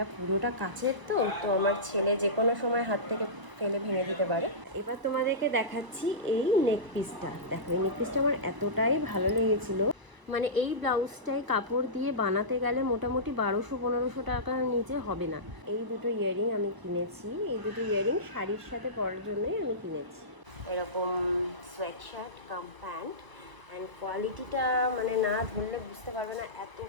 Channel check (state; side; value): late; left; 1.0 ms